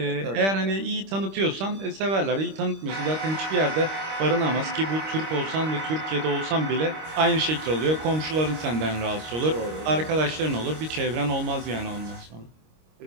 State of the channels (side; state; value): left; late; 26 ms